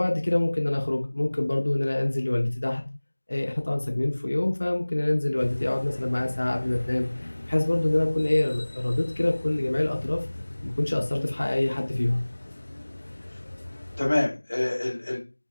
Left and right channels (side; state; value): both; inverted; correlation -1.00